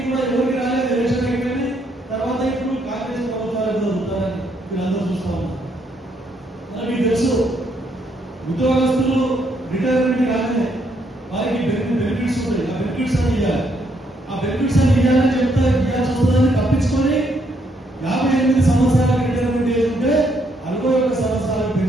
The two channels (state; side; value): normal; both; correlation 0.73